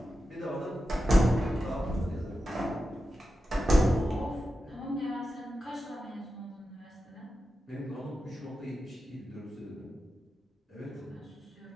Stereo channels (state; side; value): normal; both; correlation 0.91